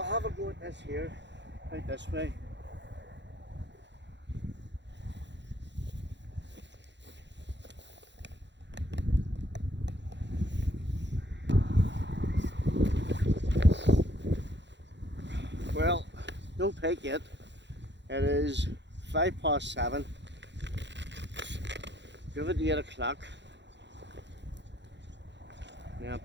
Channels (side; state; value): left; late; 0.52 ms